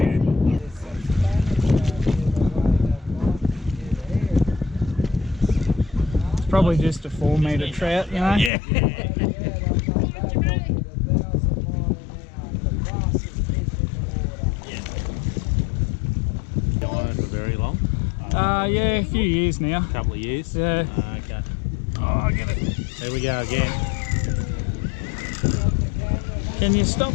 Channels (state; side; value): drops out; right; at 8.5 s